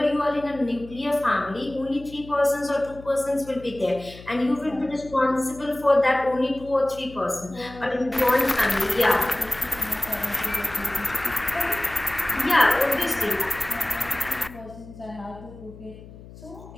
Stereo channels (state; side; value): noise; left; hum, 18 dB below the sound